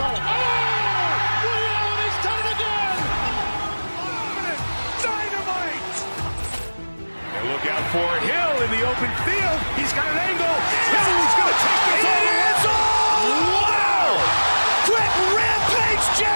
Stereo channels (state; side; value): inverted; both; correlation -1.00